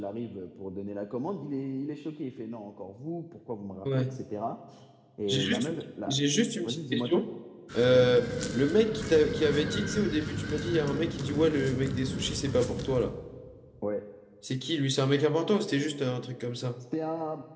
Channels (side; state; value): both; identical; correlation 1.00